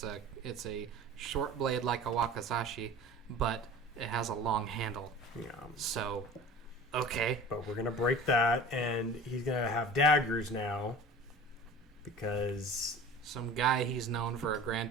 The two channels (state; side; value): normal; both; correlation 0.39